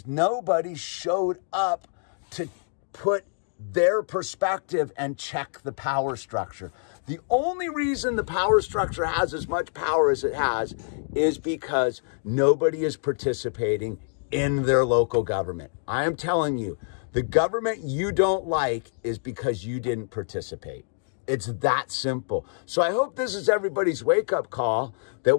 nobody showed up to put their perspective and check the power structure. The only reason the power structure has as much power as it has is because nobody is participating in their local government. I am telling you, the government you don't like is because you didn't participate. It's that simple. So I hope this is everybody's wake-up call, that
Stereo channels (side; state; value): right; silent; digital silence